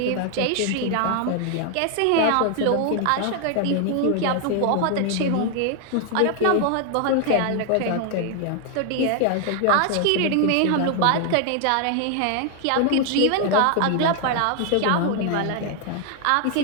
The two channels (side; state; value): both; different; correlation 0.00